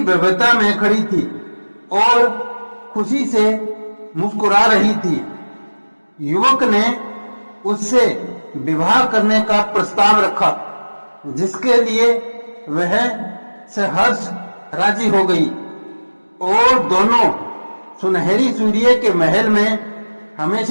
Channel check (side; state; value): both; inverted; correlation -1.00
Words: भव्यता में खड़ी थी और खुशी से मुस्कुरा रही थी। युवक ने उससे विवाह करने का प्रस्ताव रखा, जिसके लिए वह सहर्ष राजी हो गई और दोनों सुनहरी सूर्य के महल में